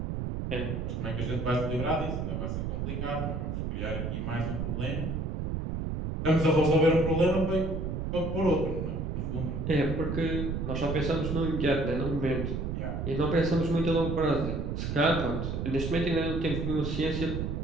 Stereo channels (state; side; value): noise; right; rumble, 2 dB below the sound